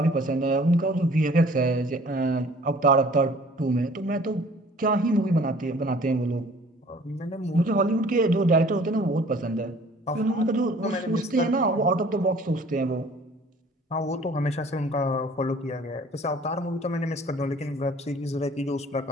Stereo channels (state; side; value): normal; both; correlation 0.52